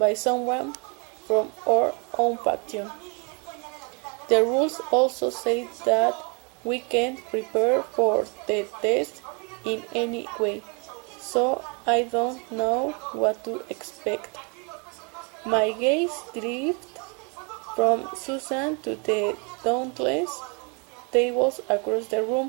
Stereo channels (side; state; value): left; quieter; 34.2 dB